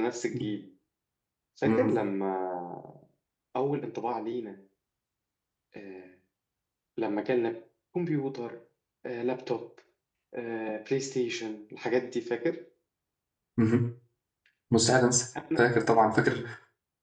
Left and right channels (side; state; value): both; identical; correlation 1.00